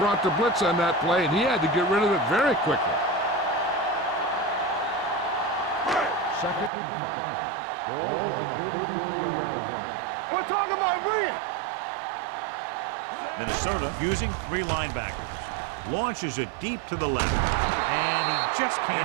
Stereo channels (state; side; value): drops out; left; at 6.7 s